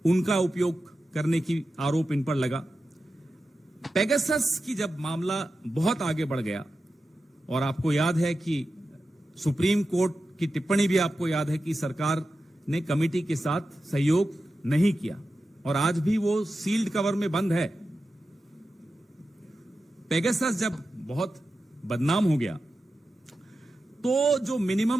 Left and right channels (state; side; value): normal; both; correlation 0.92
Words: उनका उपयोग करने की आरोप इन पर लगा। पेगासस की जब मामला बहुत आगे बढ़ गया, और आपको याद है कि सुप्रीम कोर्ट की टिप्पणी भी आपको याद है कि सरकार ने कमेटी के साथ सहयोग नहीं किया, और आज भी वो सील्ड कवर में बंद है। पेगासस जब बहुत बदनाम हो गया तो जो